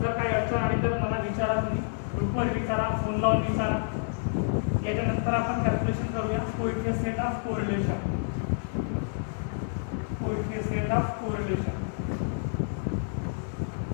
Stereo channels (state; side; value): silent; right; digital silence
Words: काही अडचण आली तर मला विचारा तुम्ही ग्रुपवर विचारा फोन लावून विचारा. याच्यानंतर आपण कॅल्क्युलेशन करूया coefficient of correlation coefficient of correlation.